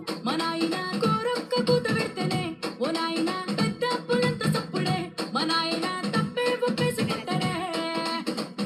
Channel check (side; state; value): both; identical; correlation 1.00